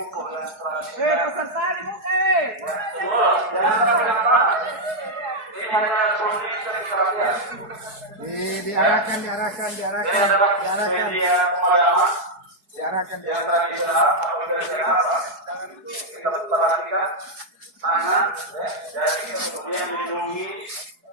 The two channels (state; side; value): late; left; 4.7 ms